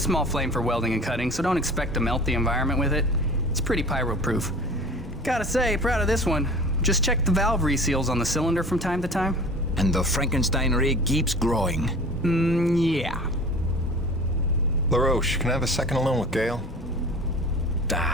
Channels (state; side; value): normal; both; correlation 0.41